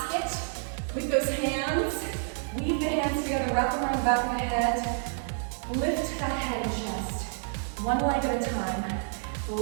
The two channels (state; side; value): silent; left; digital silence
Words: with those hands. Weave the hands together, wrap them around the back of the head. Lift that head and chest. One leg at a time.